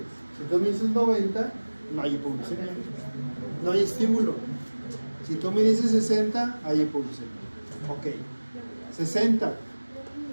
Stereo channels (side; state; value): both; inverted; correlation -1.00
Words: Si tú me dices 90, no hay hipoglucemia. No hay estímulo. Si tú me dices 60, hay hipoglucemia. Ok. 60.